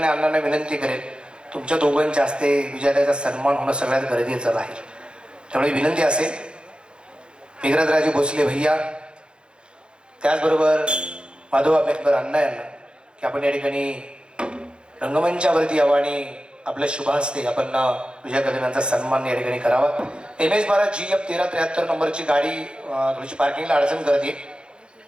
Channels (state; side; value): late; left; 0.053 ms